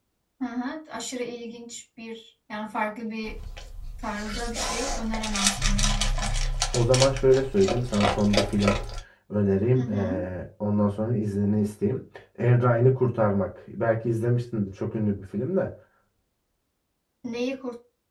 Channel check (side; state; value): both; identical; correlation 1.00